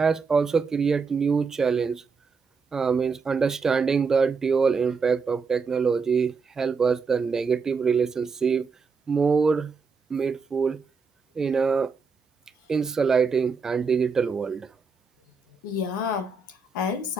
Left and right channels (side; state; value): left; quieter; 4.9 dB